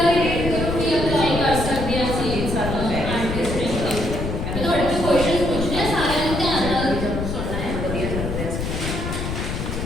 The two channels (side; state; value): left; noise; rumble, 4 dB below the sound